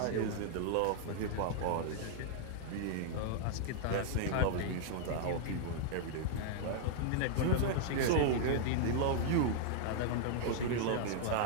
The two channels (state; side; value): different; both; correlation -0.01